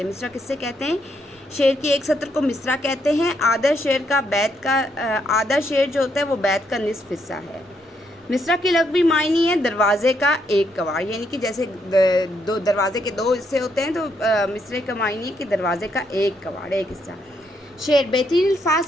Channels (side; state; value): both; normal; correlation 0.75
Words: ہیں۔ مصرع کس سے کہتے ہیں؟ شعر کے ایک سطر کو مصرع کہتے ہیں۔ آدھا شعر جو ہوتا ہے وہ بیت کا نصف حصہ ہے۔ مصرع کے لغوی معنی ہے دروازے کا ایک کواڑ، یعنی کہ جیسے دو دروازے کے 2 حصے ہوتے ہیں، تو مصرع کا معنی ہے کہ دروازے کا ایک کواڑ، ایک حصہ۔ شعر بہترین